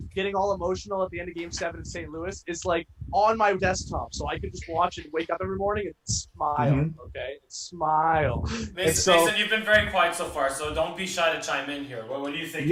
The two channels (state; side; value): identical; both; correlation 1.00